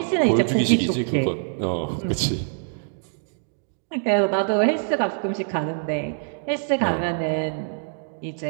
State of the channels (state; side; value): silent; left; digital silence